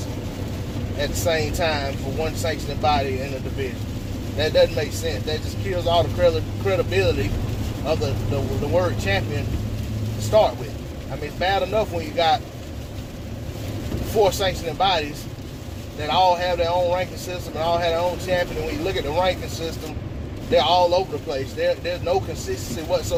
at the same time for one sanctioning body in a division. That doesn't make sense. That just kills all the credibility of the word champion to start with. I mean, it's bad enough when you got 4 sanctioning bodies that all have their own ranking system and all have their own champion. And when you look at the ranking system, they're all over the place. There's no consistency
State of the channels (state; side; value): identical; both; correlation 1.00